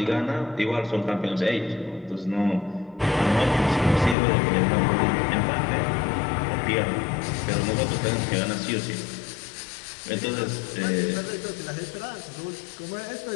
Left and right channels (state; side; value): drops out; right; at 4.2 s